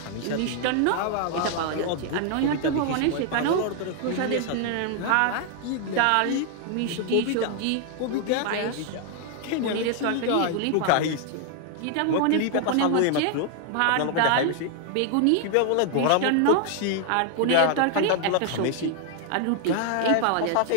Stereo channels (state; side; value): different; both; correlation 0.00